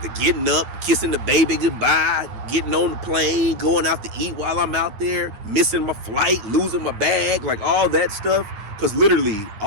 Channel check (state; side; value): late; left; 9.4 ms